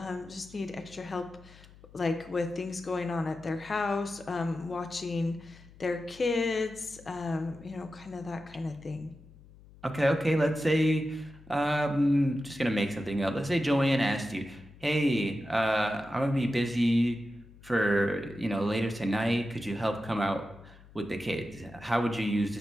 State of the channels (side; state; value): left; noise; hum, 22 dB below the sound